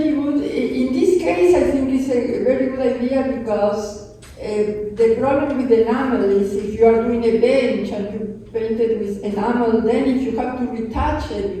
good. In this case, I think it's a very good idea, because the problem with enamel is if you are doing a bench and you paint it with enamel, then if you have to retouch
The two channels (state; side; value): identical; both; correlation 1.00